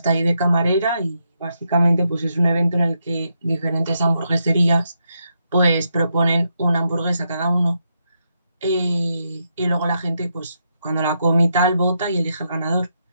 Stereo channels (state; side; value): inverted; both; correlation -0.81